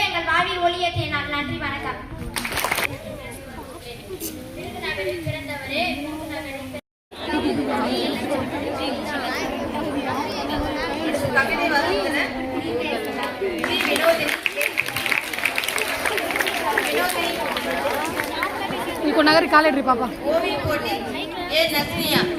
எங்கள் வாழ்வில் ஒளியேற்றிய நாள். நன்றி, வணக்கம். விருதுநகரில் பிறந்தவரே, கவிதை வசந்தனர் வினோதினி ఇంకో నగరి కాలేడ్రి పాప ஓவிய போட்டி ஏ நஸ்ரியா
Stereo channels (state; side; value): identical; both; correlation 1.00